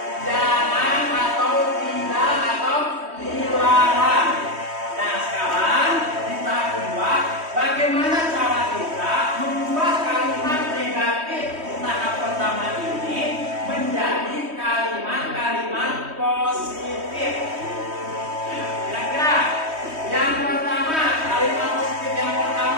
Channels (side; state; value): left; late; 3.2 ms